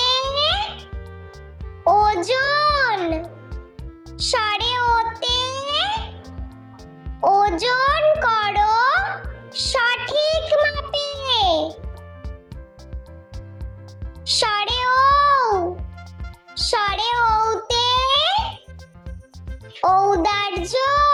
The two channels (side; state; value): both; identical; correlation 1.00